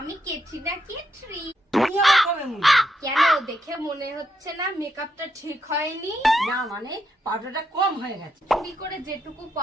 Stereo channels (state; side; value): normal; both; correlation 0.81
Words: কেটরি না কেটরি। তুমি আমার কবে মুড়ি? কেন, দেখে মনে হচ্ছে না মেকআপটা ঠিক হয়নি? না মানে পাউডারটা কম হয়ে গেছে। চুরি করে যেটুকু